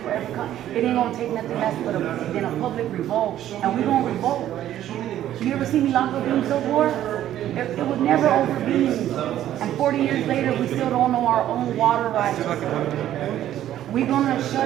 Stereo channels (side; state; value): left; quieter; 12.1 dB